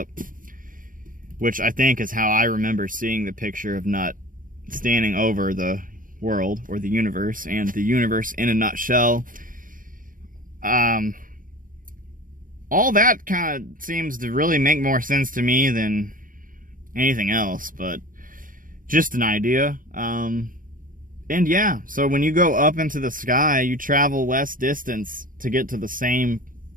which I think is how I remember seeing the picture of Nut standing over the world or the universe, and the universe in a nutshell. All that kind of seems to really make more sense to me than anything else, but just an idea. And yeah, so when you go up into the sky, you travel less distance to get to the same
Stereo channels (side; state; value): left; late; 0.40 ms